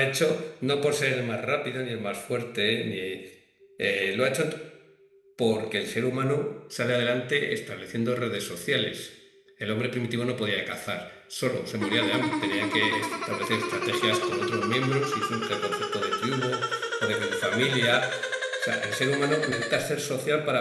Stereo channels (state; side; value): identical; both; correlation 1.00